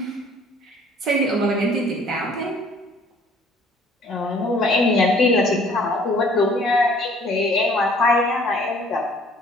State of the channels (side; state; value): both; normal; correlation 0.55